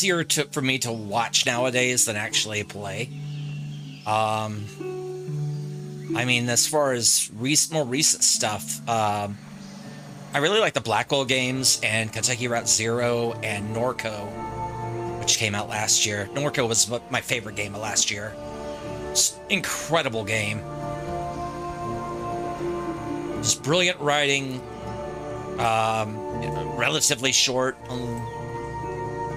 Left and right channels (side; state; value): both; identical; correlation 1.00